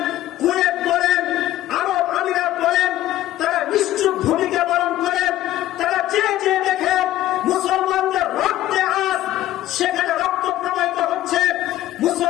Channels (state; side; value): quieter; right; 14.2 dB